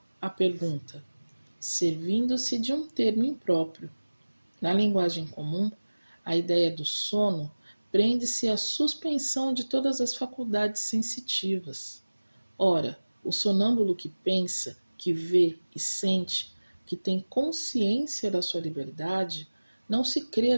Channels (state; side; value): inverted; both; correlation -1.00